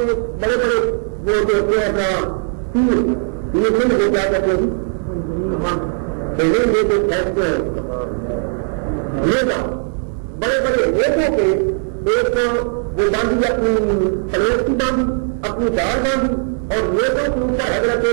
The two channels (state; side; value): silent; left; 56 dB below the other